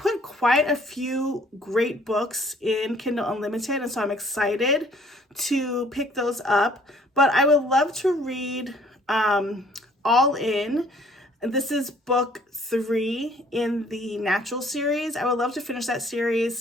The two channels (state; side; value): normal; both; correlation 0.58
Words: quite a few great books in Kindle Unlimited, and so I'm excited to pick those up. But I would love to read All In. This is book 3 in the Natural series. I would love to finish that